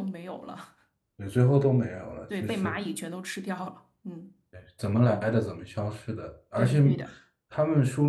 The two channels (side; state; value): both; identical; correlation 1.00